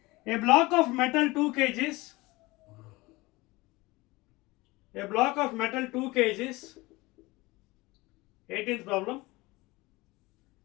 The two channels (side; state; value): right; quieter; 21.8 dB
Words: A block of metal 2 kgs. A block of metal 2 kgs. 18th problem.